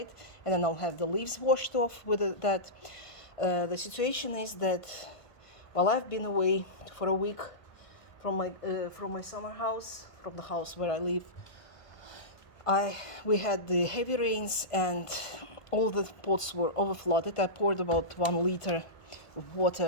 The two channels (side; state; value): right; late; 1.5 ms